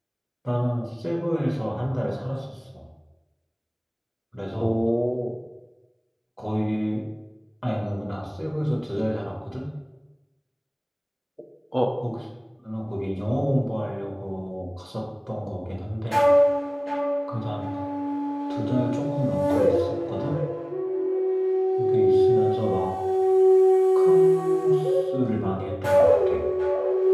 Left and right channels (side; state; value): both; identical; correlation 1.00